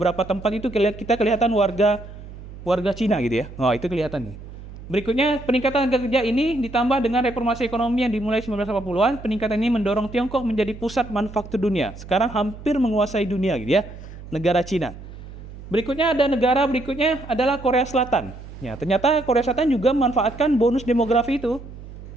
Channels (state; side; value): noise; right; hum, 14 dB below the sound